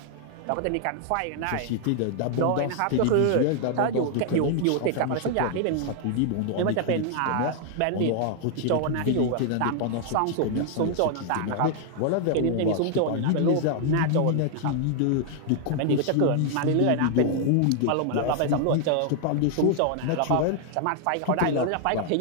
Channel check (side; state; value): both; different; correlation 0.00